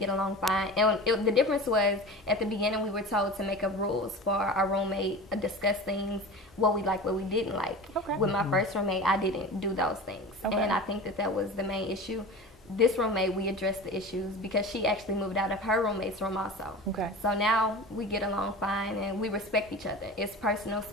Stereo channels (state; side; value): normal; both; correlation 0.34